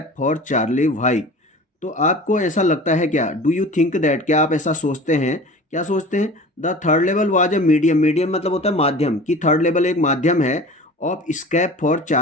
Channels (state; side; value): normal; both; correlation 0.39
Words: for Charlie why. तो आपको ऐसा लगता है क्या, डू यू थिंक दैट, क्या आप ऐसा सोचते हैं, क्या सोचते हैं the third level was a medium, medium मतलब होता है माध्यम, कि थर्ड लेवल एक माध्यम है of escape for